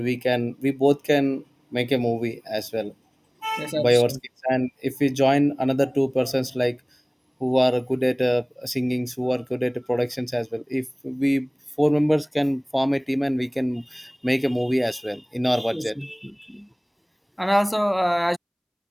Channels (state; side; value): identical; both; correlation 1.00